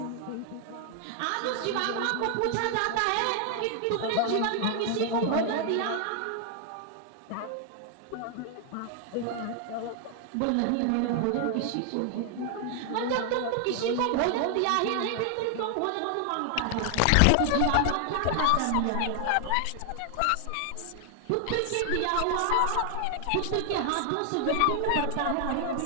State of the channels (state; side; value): different; both; correlation 0.00